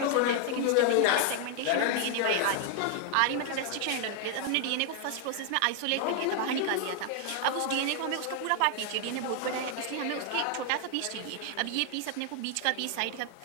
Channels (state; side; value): different; both; correlation 0.00